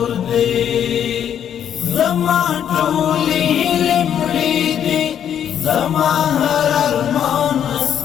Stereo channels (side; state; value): right; quieter; 9.3 dB